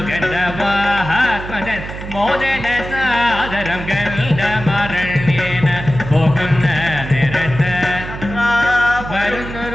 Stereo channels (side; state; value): right; noise; hum, 10 dB below the sound